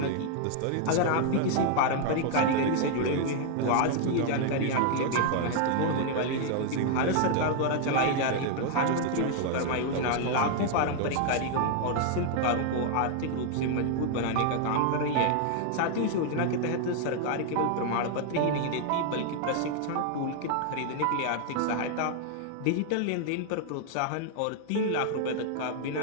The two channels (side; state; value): both; different; correlation 0.00